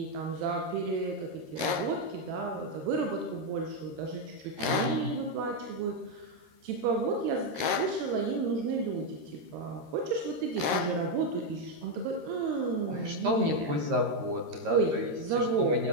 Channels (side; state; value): left; late; 13 ms